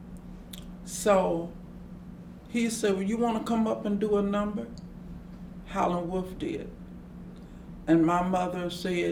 so he said, "Well, you want to come up and do a number?" Howlin' Wolf did. And my mother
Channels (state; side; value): identical; both; correlation 1.00